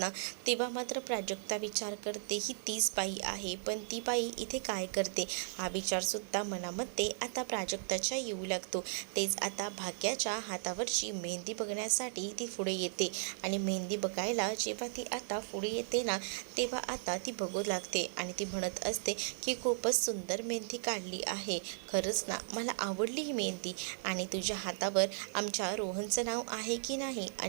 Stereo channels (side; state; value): left; silent; 54 dB below the other